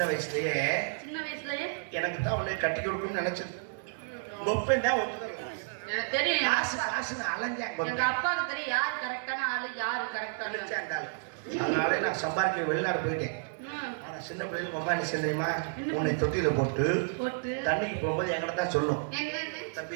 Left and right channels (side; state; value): left; silent; digital silence